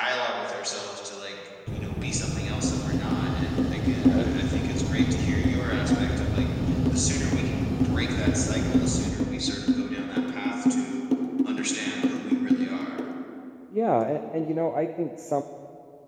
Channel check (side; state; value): both; identical; correlation 1.00